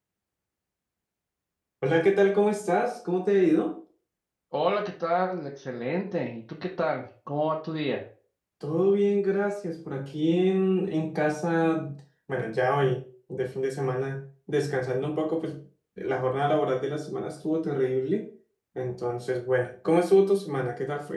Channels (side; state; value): both; identical; correlation 1.00